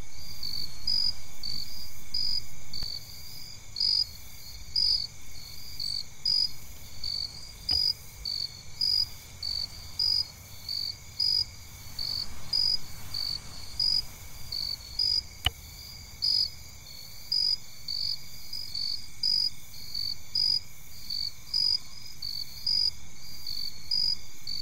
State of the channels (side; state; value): both; identical; correlation 1.00